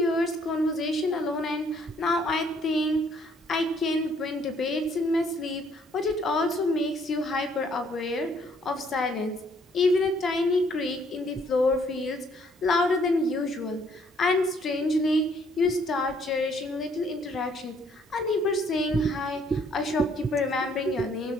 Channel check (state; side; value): normal; both; correlation 0.64